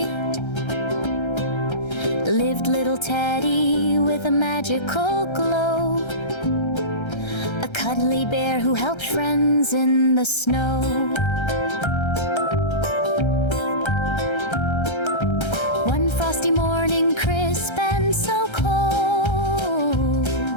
lived little Teddy with a magical glow, a cuddly bear who helped friends in the snow. One frosty morning, crisp and so cold,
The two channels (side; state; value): right; late; 1.3 ms